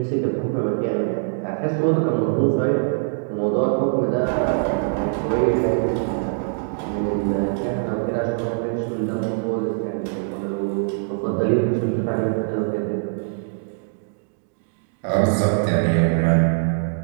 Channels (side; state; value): left; silent; digital silence